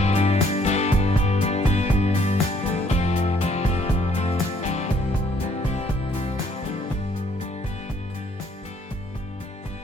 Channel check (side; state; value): both; normal; correlation 0.65